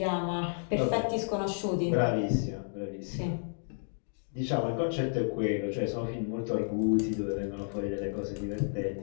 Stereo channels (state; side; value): silent; right; digital silence